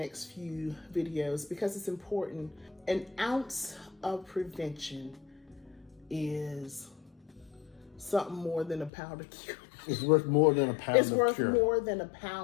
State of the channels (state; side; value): drops out; right; at 8.9 s